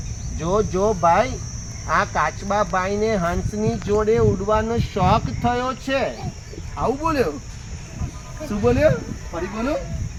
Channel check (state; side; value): identical; both; correlation 1.00